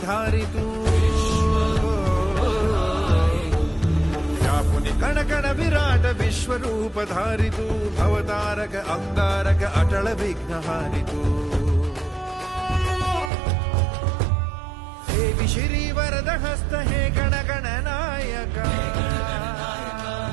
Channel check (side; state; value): left; drops out; at 13.3 s